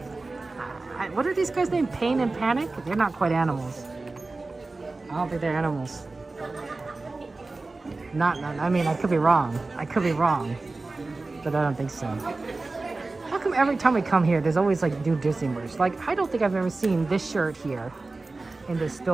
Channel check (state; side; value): quieter; left; 3.4 dB